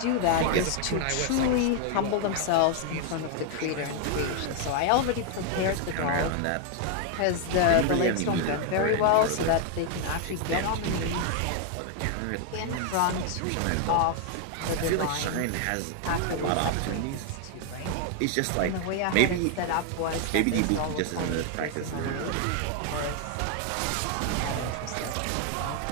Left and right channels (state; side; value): different; both; correlation 0.00